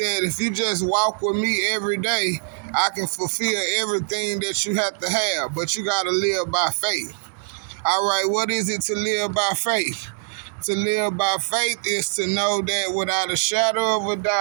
if you just walk with me every day, I can fulfill everything that you have to have, but you got to live by faith. All right, what is it to live by faith? To live by faith is to know that without a shadow of a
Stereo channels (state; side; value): silent; left; digital silence